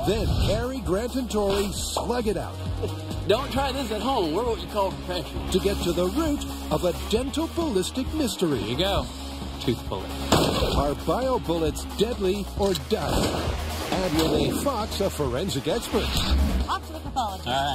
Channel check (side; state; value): both; identical; correlation 1.00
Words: Then Harry, Grant, and Tori slug it out. Don't try this at home. We're what you call professionals. To get to the root of a dental ballistic mystery. Here you go. Tooth bullet. Are bio bullets deadly or dying? And will they fox a forensic expert? Off to the pathologist.